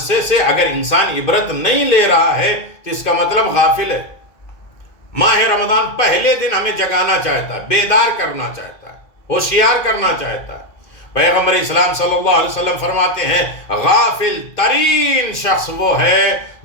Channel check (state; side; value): late; right; 2.2 ms